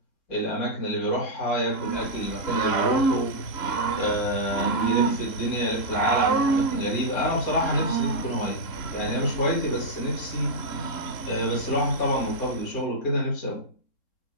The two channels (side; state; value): right; late; 3.7 ms